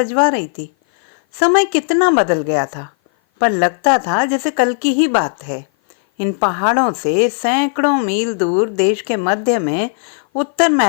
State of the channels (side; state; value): right; silent; 56 dB below the other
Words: रही थी। समय कितना बदल गया था, पर लगता था जैसे कल की ही बात है। इन पहाड़ों से सैकड़ों मील दूर देश के मध्य में उत्तर